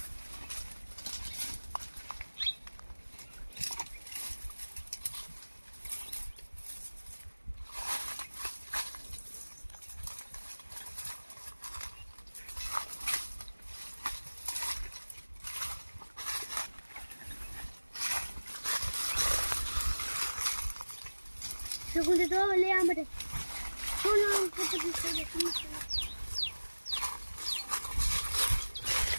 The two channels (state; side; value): inverted; both; correlation -1.00